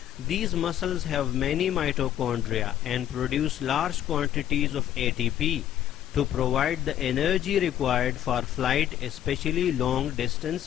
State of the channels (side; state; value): right; quieter; 11.2 dB